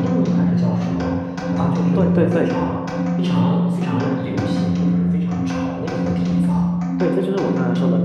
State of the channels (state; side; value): identical; both; correlation 1.00